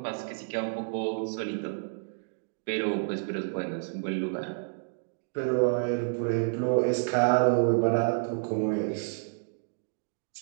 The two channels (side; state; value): left; silent; digital silence